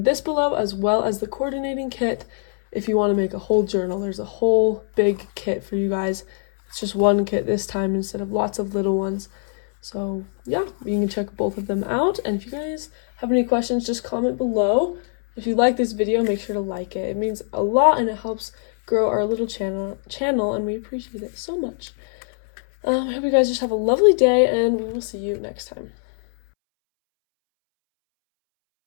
this below as well as the coordinating kit. If you want to make a whole journal, there's a whole big kit for you guys. It's just one kit this time instead of lots of little ones. So yeah, you can check both of them out. And if you guys have any questions, just comment below. If you like this video, make sure to like it. It means a lot and it helps grow our little channel and we appreciate it so much. I hope you guys just have a lovely day and we will see you next time.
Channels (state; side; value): silent; right; 64 dB below the other